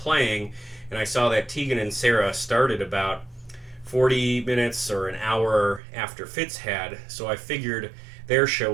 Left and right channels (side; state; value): left; drops out; at 5.8 s